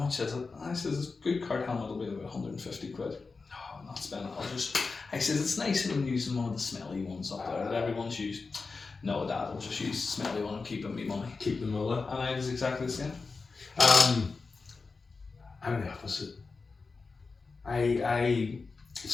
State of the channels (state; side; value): quieter; right; 4.3 dB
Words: is it? And I says, a good cart helmet will be about 150 quid. No, I'm not spending it. I says, it's nicer than using one of the smelly ones up there that everyone's used. No, Dad, I'll just use the smelly one and keep me money. Keep the mullah. And I was exactly the same. I'm the opposite.